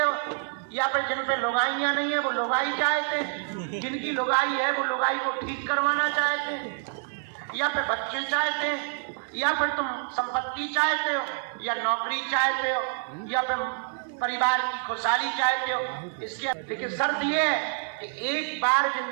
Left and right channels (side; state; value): left; silent; 55 dB below the other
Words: या फिर जिन पे लुगाइयां नहीं है वो लुगाई चाहते हैं, जिनकी लुगाई है वो लुगाई को ठीक करवाना चाहते हैं, या फिर बच्चे चाहते हैं, या फिर तुम संपत्ति चाहते हो, या नौकरी चाहते हो, या फिर परिवार की खुशहाली चाहते हो। इसके लेकिन शर्त ये है कि एक बार